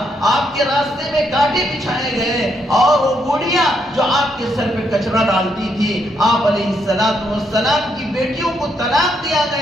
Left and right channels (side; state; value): both; normal; correlation 0.76